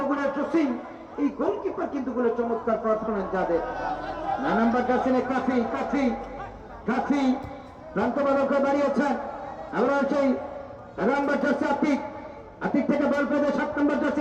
জসিম। এই গোলকিপার কিন্তু গুলো চমৎকার পারফরমেন্স যাদের। না নাম্বার জার্সিনে কাফি, কাফি, কাফি প্রান্ত বালক বাড়িয়েছেন। আবার সেই নাম্বার জার্সি আতিক, আতিক থেকে বল পেয়ে 7 নম্বর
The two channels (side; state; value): both; identical; correlation 1.00